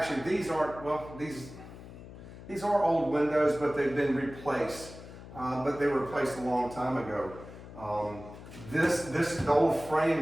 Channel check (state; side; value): noise; left; hum, 15 dB below the sound